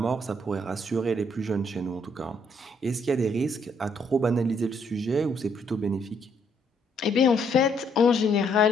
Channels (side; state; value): both; normal; correlation 0.70